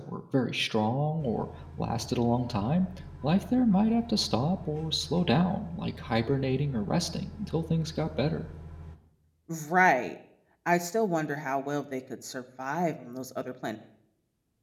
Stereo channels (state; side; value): identical; both; correlation 1.00